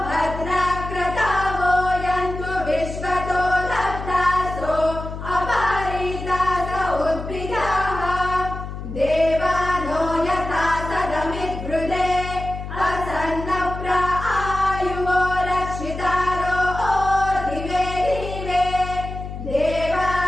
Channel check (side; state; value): left; noise; hum, 8 dB below the sound